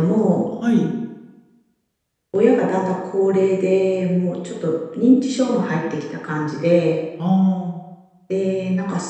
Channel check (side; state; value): both; identical; correlation 1.00